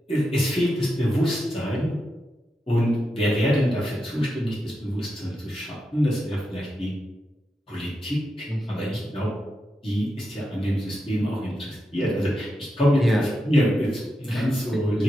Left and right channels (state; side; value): normal; both; correlation 0.87